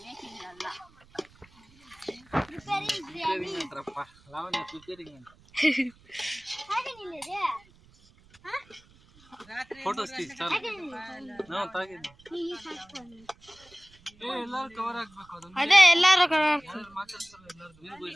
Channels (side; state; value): right; noise; rumble, 27 dB below the sound